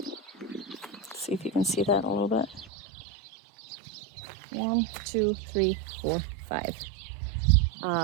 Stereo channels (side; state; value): left; drops out; at 2.7 s